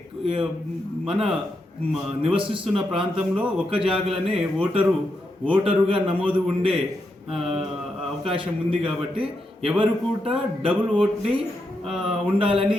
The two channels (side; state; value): both; normal; correlation 0.84